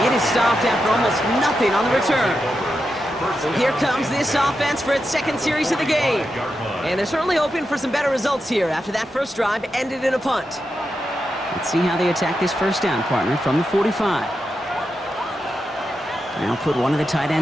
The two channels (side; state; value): both; normal; correlation 0.88